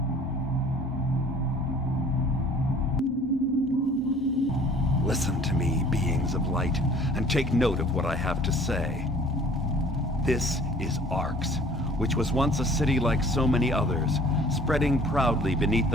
Listen to me, beings of light, and take note of what I have to say. This is Arx, which was once a city like so many others, spreading proudly beneath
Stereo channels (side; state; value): both; normal; correlation 0.51